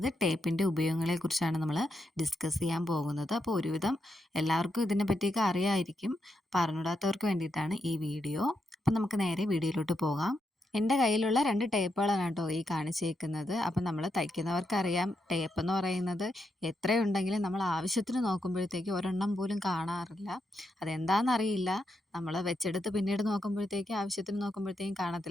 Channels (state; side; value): normal; both; correlation 0.83